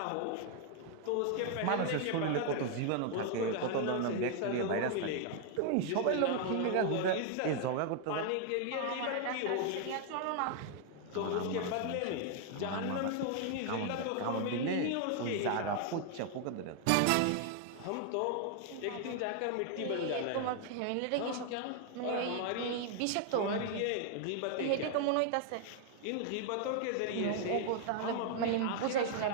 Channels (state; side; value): different; both; correlation 0.00